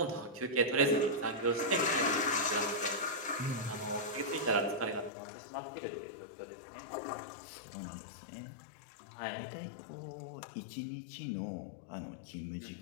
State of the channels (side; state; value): right; drops out; at 5.1 s